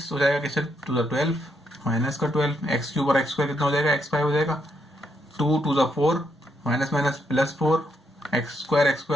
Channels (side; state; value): both; normal; correlation 0.78